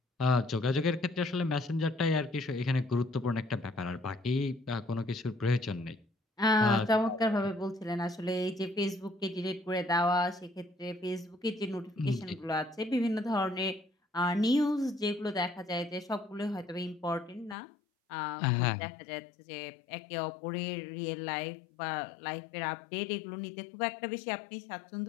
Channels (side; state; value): right; drops out; at 17.6 s